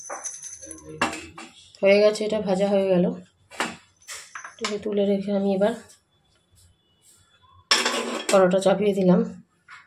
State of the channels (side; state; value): both; identical; correlation 1.00